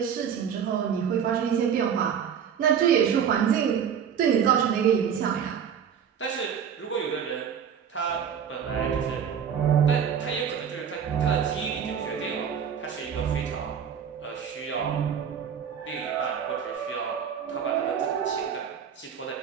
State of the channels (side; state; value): left; quieter; 7.9 dB